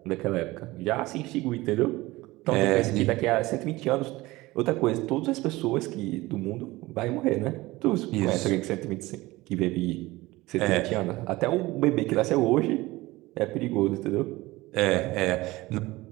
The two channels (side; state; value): left; quieter; 19.8 dB